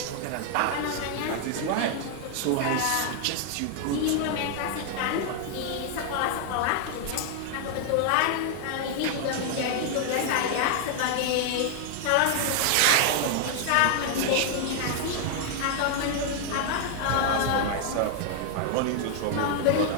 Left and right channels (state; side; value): different; both; correlation 0.00